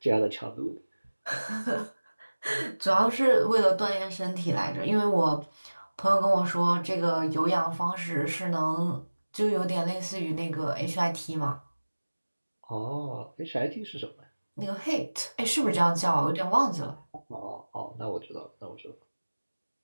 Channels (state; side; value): inverted; both; correlation -1.00